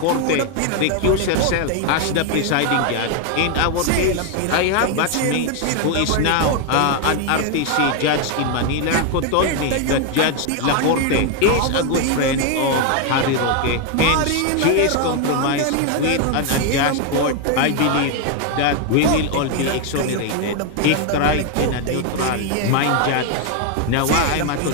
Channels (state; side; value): different; both; correlation 0.01